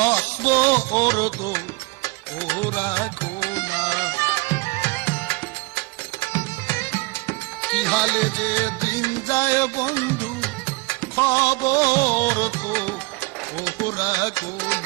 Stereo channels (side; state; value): left; quieter; 25.6 dB